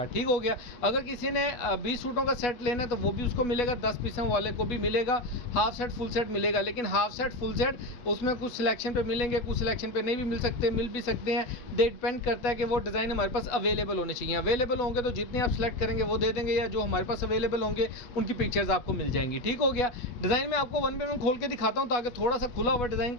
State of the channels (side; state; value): right; late; 8.2 ms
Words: ठीक हो गया। अगर किसी ने 20 सूटों का सेट लेना है तो वो भी उसको मिलेगा, 10 पीसों वाले को भी मिलेगा। हाफ सेट फुल सेट मिलेगा, लेकिन हाफ सेट फुल सेट उसमें कुछ सिलेक्शन पे मिलेंगे, कुछ सिलेक्शन पे नहीं भी मिल सकते, मिल भी सकते हैं। डिपेंड करता है कि वो डिज़ाइन हमारे पास अवेलेबल होने चाहिए। अवेलेबल होंगे तो जितने आप सेलेक्ट करेंगे वो दे देंगे, या जो हमारे पास अवेलेबल होंगे उनकी पिक्चर्स आपको मिल जाएंगी। ठीक हो गया। डिज़ाइन में आपको वन बाय वन खोल के दिखाता हूँ ताकि थोड़ा सा खुला हुआ डिज़ाइन